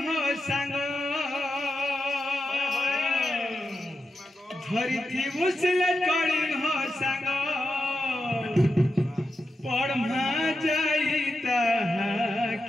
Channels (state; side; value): normal; both; correlation 0.88